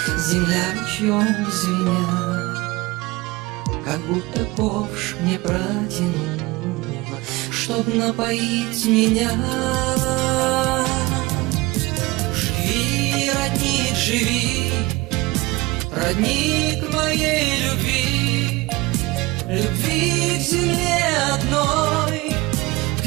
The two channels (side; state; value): left; quieter; 21.9 dB